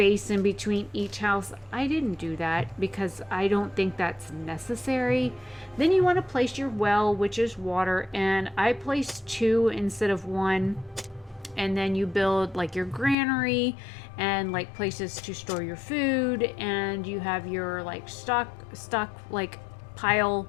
in between each house. I didn't do that because I don't think that's necessary. Then you want to place your well, which is water, and I placed 2 instead of 1. And then you build like your granary and like places to store your food, and you have your like stock like pile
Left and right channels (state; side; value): drops out; right; at 13.2 s